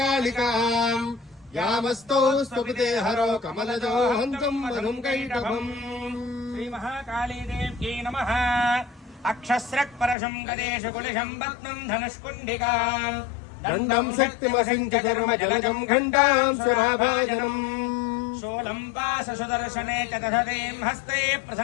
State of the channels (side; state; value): right; drops out; at 10.2 s